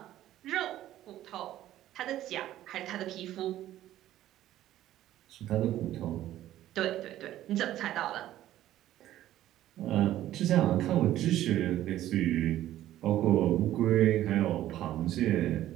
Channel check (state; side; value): quieter; left; 13.4 dB